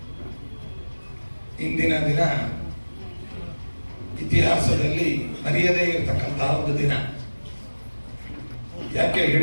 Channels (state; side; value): inverted; both; correlation -1.00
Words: ಇಂದಿನ ದಿನ ಇತಿಹಾಸದಲ್ಲಿ ಮರೆಯದೇ ಇರತಕ್ಕಂತಹ ಒಂದು ದಿನ. ಯಾಕೆ